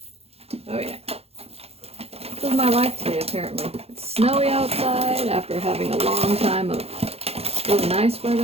Oh yeah. This is my life today, apparently. It's snowy outside after having a long time of really nice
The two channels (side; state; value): left; late; 0.29 ms